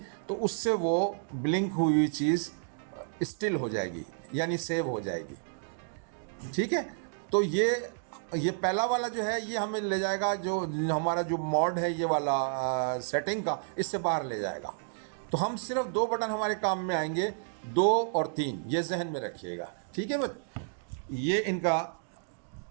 तो उससे वो ब्लिंक हुई चीज़ स्टिल हो जाएगी, यानी सेव हो जाएगी। ठीक है, तो ये पहला वाला जो है ये हमें ले जाएगा, जो हमारा जो मोड है ये वाला सेटिंग का, इससे बाहर ले जाएगा। तो हम सिर्फ 2 बटन हमारे काम में आएंगे, 2 और 3, ये जहन में रखिएगा। ठीक है बस, ये इनका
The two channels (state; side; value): silent; left; digital silence